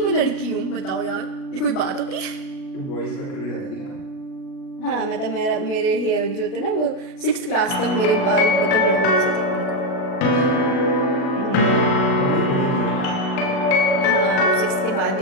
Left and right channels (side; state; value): right; late; 37 ms